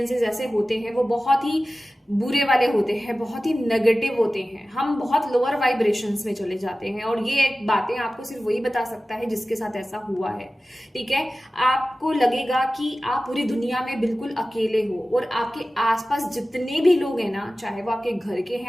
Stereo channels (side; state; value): both; normal; correlation 0.96